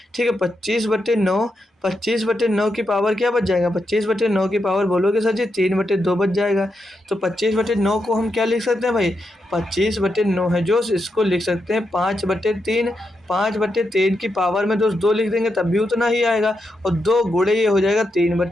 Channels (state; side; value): normal; both; correlation 0.84